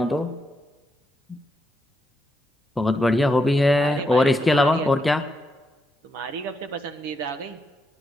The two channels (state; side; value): normal; both; correlation 0.83